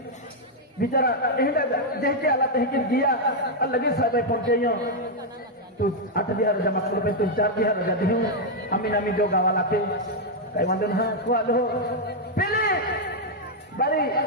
बिचारा एहडा देखे आला तहकिन दिया और लगे साहब पहुंचे तू 8,000 जमा कर पे तू 4,000 रजा दे अमीन अमीन जो गावा लाते काय वांदो ना को आलो पहले बारे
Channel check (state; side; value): normal; both; correlation -0.01